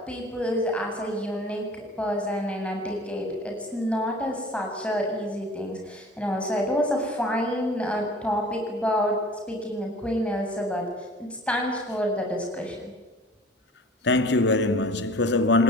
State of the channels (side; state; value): both; normal; correlation 0.45